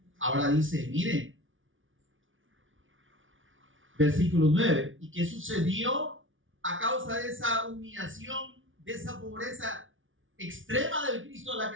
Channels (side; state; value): left; late; 0.57 ms